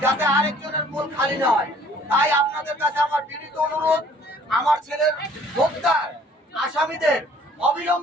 যাতে আরেকজনের কোল খালি না হয়। তাই আপনাদের কাছে আমার বিনীত অনুরোধ, আমার ছেলের হত্যার আসামিদের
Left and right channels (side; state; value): both; normal; correlation 0.56